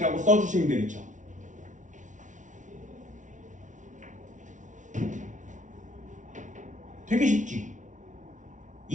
써주시면 되겠죠. 되게 쉽지.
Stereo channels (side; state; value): left; late; 0.37 ms